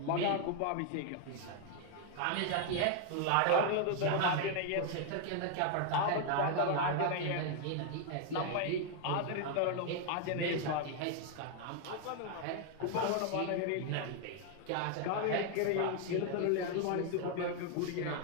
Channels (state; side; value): different; both; correlation 0.00